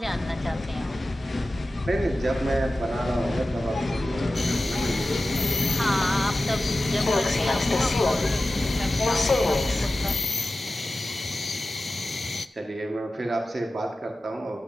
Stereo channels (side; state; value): both; normal; correlation 0.95